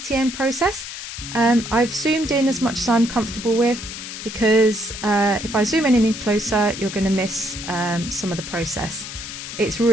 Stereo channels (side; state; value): left; noise; hiss, 9 dB below the sound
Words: process. I've zoomed in as much as I'm comfortable with because if I zoom in any closer you're going to miss some of the process. It's